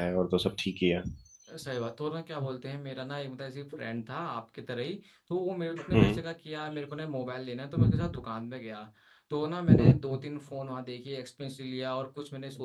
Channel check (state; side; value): identical; both; correlation 1.00